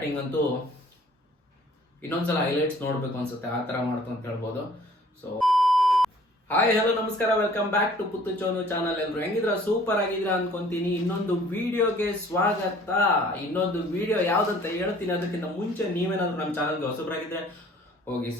ಅಂತೂ ಇನ್ನೊಂದ್ಸಲ highlights ನೋಡ್ಬೇಕು ಅನ್ಸುತ್ತೆ, ಆ ತರ ಮಾಡ್ತು ಅಂತ ಹೇಳ್ಬೋದು. ಸೊ ಹಾಯ್ ಹಲೋ ನಮಸ್ಕಾರ, ವೆಲ್ಕಮ್ ಬ್ಯಾಕ್ ಟು ಪುತ್ತು ಚೋನು ಚಾನಲ್. ಎಲ್ರು ಹೆಂಗಿದ್ರ? ಸೂಪರ್ ಆಗಿದ್ರ ಅನ್ಕೊಂತೀನಿ. ಇನ್ನೊಂದು ವಿಡಿಯೋಗೆ ಸ್ವಾಗತ. ಇನ್ನೊಂದು ವಿಡಿಯೋ ಯಾವ್ದಂತ ಹೇಳ್ತೀನಿ. ಅದಕ್ಕಿಂತ ಮುಂಚೆ ನೀವೇನಾದ್ರೂ ನಮ್ಮ ಚಾನಲ್ಗೆ ಹೊಸಬರಾಗಿದ್ರೆ ಹೋಗಿ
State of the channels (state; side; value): normal; both; correlation 0.54